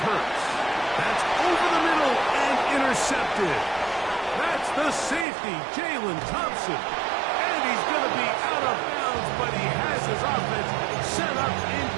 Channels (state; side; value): drops out; left; at 5.2 s